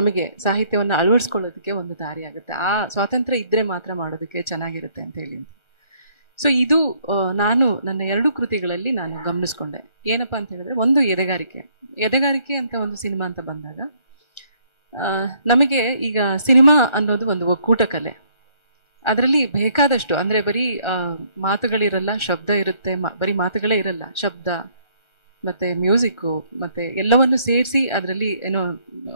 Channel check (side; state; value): right; late; 1.4 ms